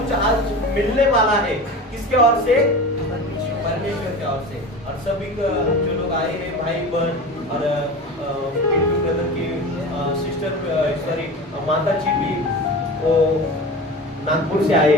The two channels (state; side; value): normal; both; correlation 0.32